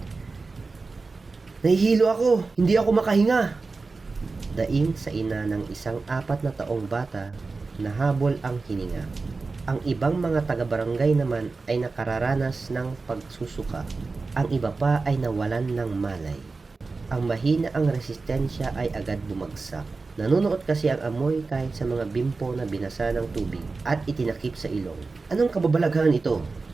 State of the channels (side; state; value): left; quieter; 4.0 dB